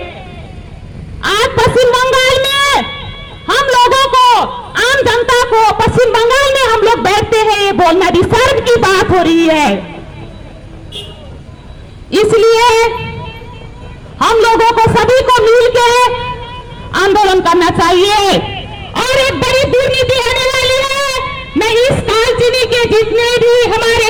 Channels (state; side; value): identical; both; correlation 1.00